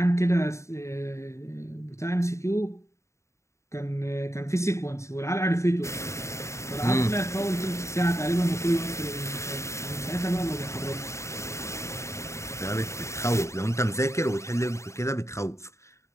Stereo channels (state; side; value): late; right; 0.14 ms